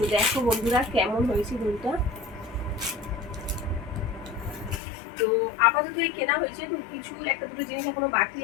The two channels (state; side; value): drops out; right; at 4.8 s